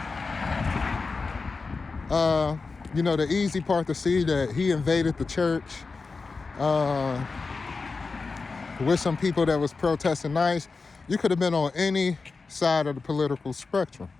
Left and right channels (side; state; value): right; quieter; 4.3 dB